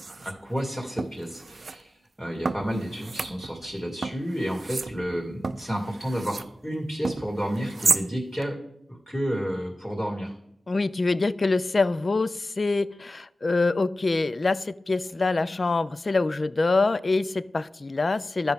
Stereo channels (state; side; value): normal; both; correlation 0.95